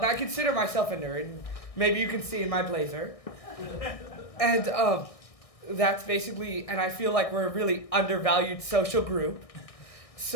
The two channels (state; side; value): late; right; 1.6 ms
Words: I consider myself a nerd. Maybe you can see in my blazer. And that's basically, and I feel like we're a really undervalued social group.